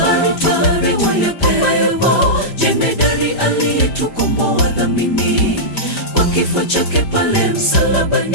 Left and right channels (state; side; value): late; right; 5.0 ms